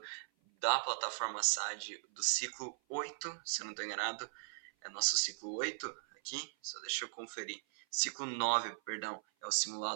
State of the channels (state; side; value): silent; left; 52 dB below the other